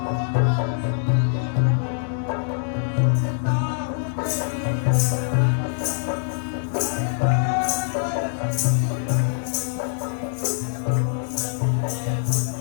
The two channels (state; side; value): silent; right; digital silence